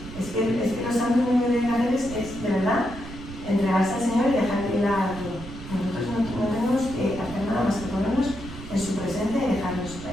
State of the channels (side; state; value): right; noise; rumble, 12 dB below the sound